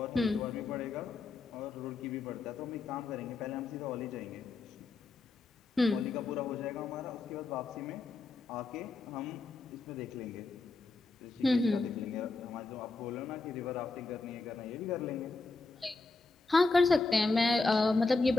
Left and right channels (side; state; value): right; quieter; 3.7 dB